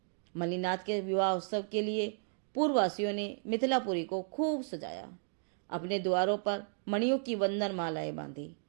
मल्लीनाथ के विवाह उत्सव के लिए पूर्ववासियों ने मिथिलापुरी को खूब सजाया। अपने द्वारों पर मणियों की वंदन मालाएं बांधी,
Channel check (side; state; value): left; silent; digital silence